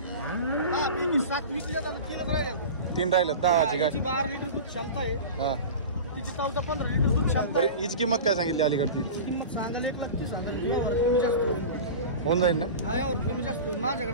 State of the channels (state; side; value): inverted; both; correlation -0.31